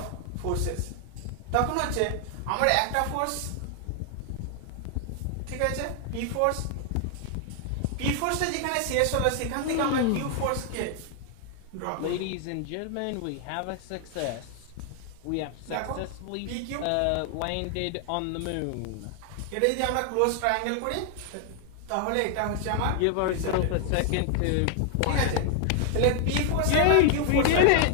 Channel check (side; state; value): both; different; correlation 0.00